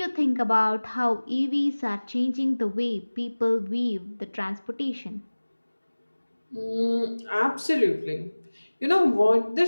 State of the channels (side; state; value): both; inverted; correlation -1.00